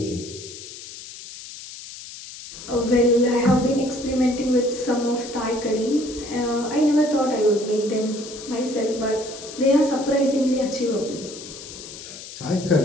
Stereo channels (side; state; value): left; noise; hiss, 13 dB below the sound